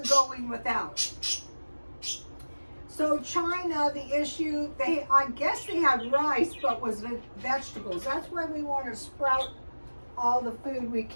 going without. So China, the issue, I guess they had rice, but was vegetables. That's why we want to sprout all the food we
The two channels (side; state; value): both; inverted; correlation -1.00